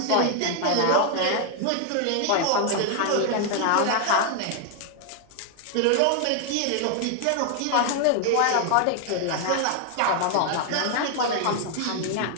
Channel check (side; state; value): both; different; correlation 0.00